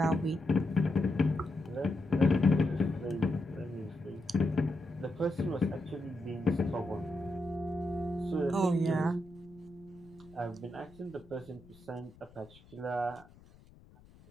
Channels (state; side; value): noise; left; rumble, 24 dB below the sound